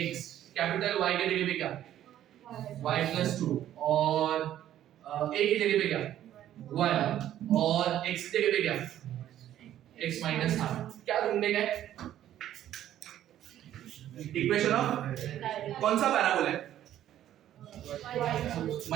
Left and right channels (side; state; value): left; quieter; 11.9 dB